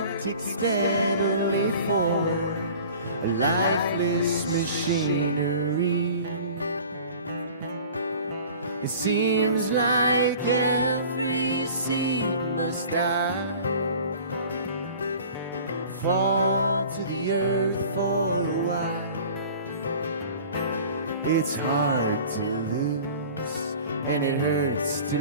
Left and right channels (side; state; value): both; inverted; correlation -0.44